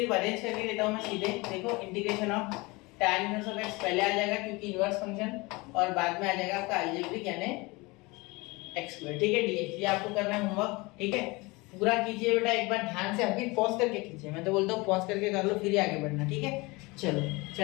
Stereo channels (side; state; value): right; quieter; 24.5 dB